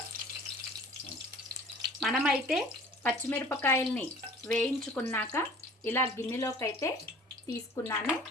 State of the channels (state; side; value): normal; both; correlation 0.47